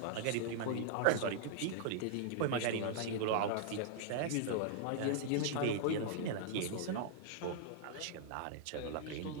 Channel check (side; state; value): both; different; correlation -0.01